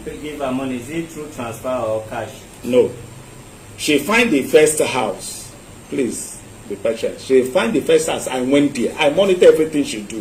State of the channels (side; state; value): both; identical; correlation 1.00